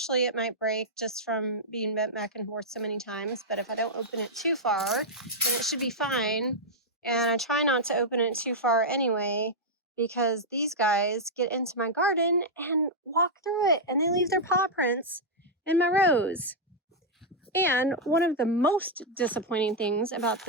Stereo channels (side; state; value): both; normal; correlation -0.04